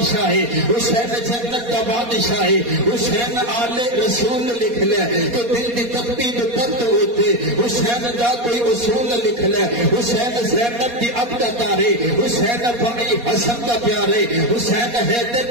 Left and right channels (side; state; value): left; late; 4.2 ms